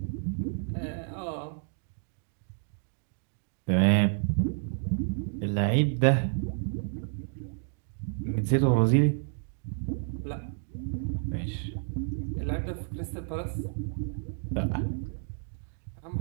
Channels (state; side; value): silent; left; digital silence